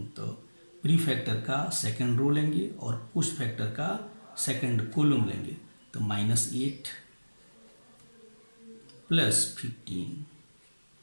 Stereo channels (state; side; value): inverted; both; correlation -1.00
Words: तो प्री फैक्टर का सेकंड रो लेंगे और पोस्ट फैक्टर का सेकंड कॉलम लेंगे। तो -8 प्लस 15।